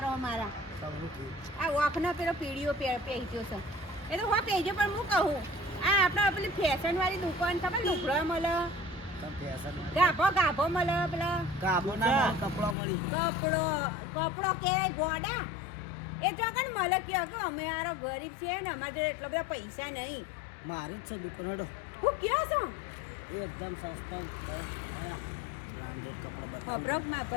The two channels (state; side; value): drops out; right; at 12.8 s